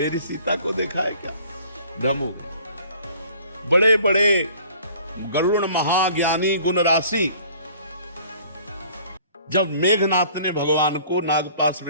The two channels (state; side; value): inverted; both; correlation -0.52